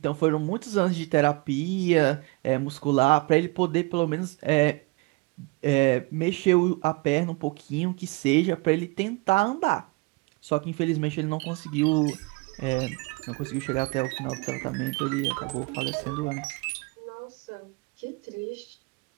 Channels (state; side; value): quieter; left; 25.9 dB